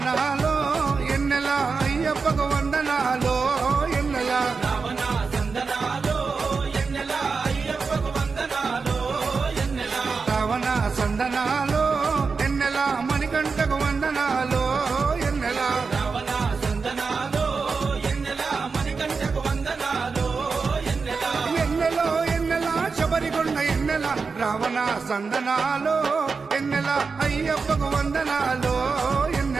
ఎన్నెల అయ్యప్పకు వందనాలో ఎన్నెల రావణ సందనాలో ఎన్నెల అయ్యప్పకు వందనాలో ఎన్నెల రావణ సందనాలో ఎన్నెల మణికంఠకు వందనాలో ఎన్నెల రావణ సందనాలో ఎన్నెల మణికంఠకు వందనాలో ఎన్నెల ఎన్నెలో ఎన్నెల శబరికొండ ఎన్నెల రావణ సందనాలో ఎన్నెల అయ్యప్పకు వందనాలో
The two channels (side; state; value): left; quieter; 4.8 dB